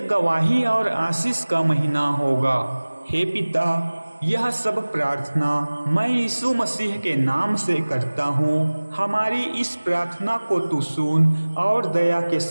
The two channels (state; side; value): inverted; both; correlation -1.00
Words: गवाही और आशीष का महीना होगा। हे पिता, यह सब प्रार्थना मैं यीशु मसीह के नाम से करता हूँ। हमारी इस प्रार्थना को तू सुन और दया के